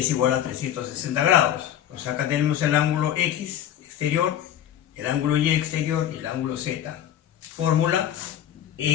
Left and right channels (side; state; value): right; quieter; 10.8 dB